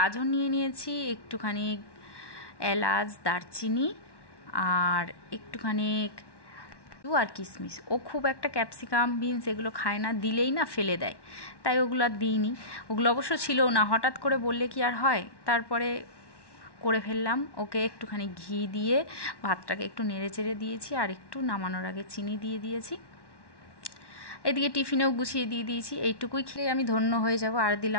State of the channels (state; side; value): late; right; 1.1 ms